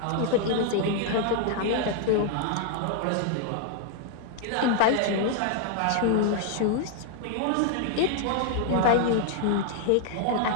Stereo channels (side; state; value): both; different; correlation 0.00